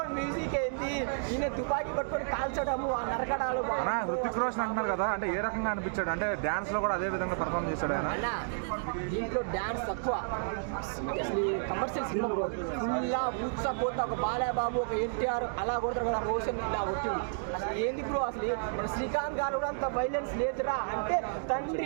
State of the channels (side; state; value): left; silent; digital silence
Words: మ్యూజిక్ ఏంది, ఈయన తుపాకీ పట్టుకొని కాల్చడము, ఆ నరకడాలు. హృతిక్ రోషన్ అంటున్నారు కదా, అంటే ఏ రకంగా అనిపించాడు? అంటే డాన్స్ లో కూడా అదే విధంగా పర్ఫార్మ్ చేశాడు ఆయన. దీంట్లో డాన్స్ తక్కువ, అసలు కమర్షియల్ సినిమా బ్రో. ఫుల్లా ఊత్సా పోతా, ఒక బాలయ్యబాబు ఒక ఎన్టీఆర్ అలా కొడతారు కదా, రోషన్ ఇలా కొట్టింది. అసలు ఏంది బ్రో, అసలు మన శ్రీకాంత్ గారు కూడా అంత వైలెన్స్ లేదురా అంటే